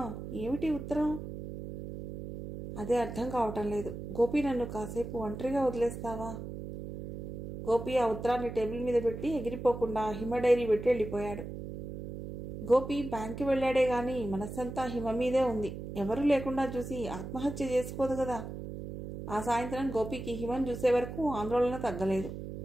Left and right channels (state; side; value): noise; right; hum, 8 dB below the sound